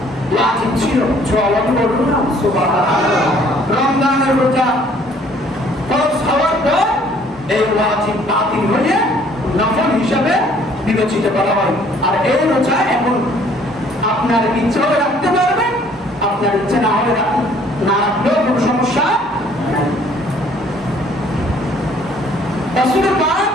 ওয়াজিব ছিল। জওয়ান বলুন না সুবহানাল্লাহ। রমজানের রোজা ফরজ হওয়ার পর এই ওয়াজিব বাতিল হয়ে নফল হিসাবে বিবেচিত করা হয়। আর এই রোজা এখন আপনার ইচ্ছা হলে রাখতে পারবেন, আপনার ইচ্ছা না হলে না রাখলেও কোনো সমস্যা নাই। রাসূল পাক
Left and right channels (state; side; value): normal; both; correlation 0.59